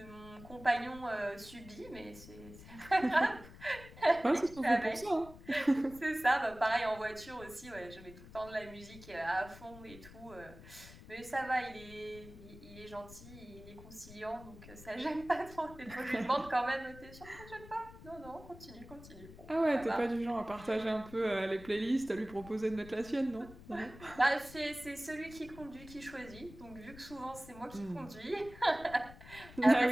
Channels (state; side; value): noise; left; rumble, 17 dB below the sound